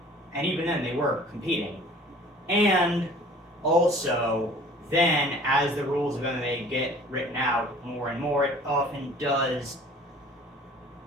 And even then, they were competing. And also, then, as the rules of MMA get written out more and more, it often does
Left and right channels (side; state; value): both; normal; correlation 0.49